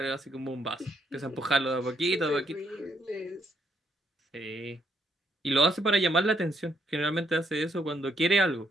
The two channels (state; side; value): normal; both; correlation 0.72